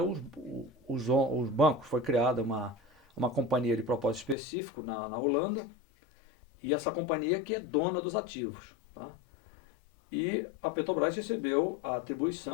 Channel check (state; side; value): drops out; right; at 4.4 s